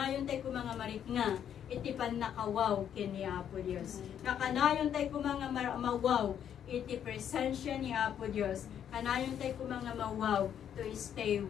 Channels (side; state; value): right; quieter; 9.3 dB